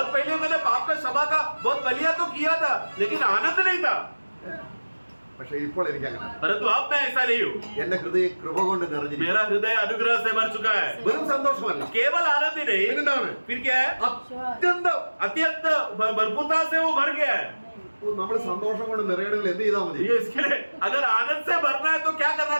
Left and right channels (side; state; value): both; inverted; correlation -1.00